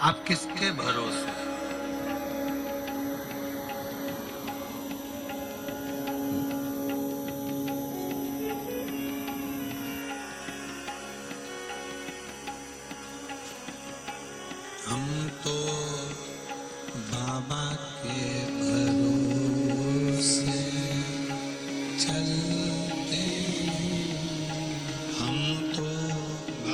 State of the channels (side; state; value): both; identical; correlation 1.00